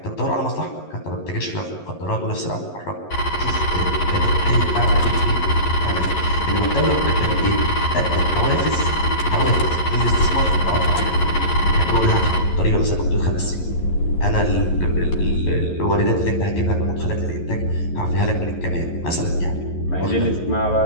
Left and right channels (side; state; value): right; late; 11 ms